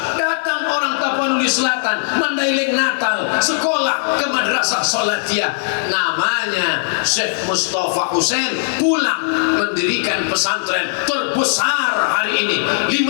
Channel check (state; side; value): silent; right; 61 dB below the other